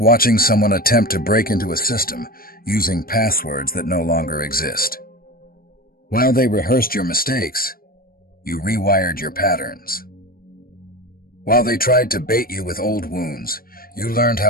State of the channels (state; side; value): late; right; 0.43 ms